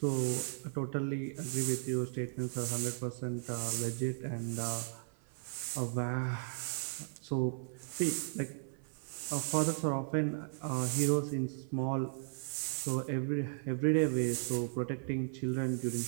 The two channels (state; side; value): silent; left; 54 dB below the other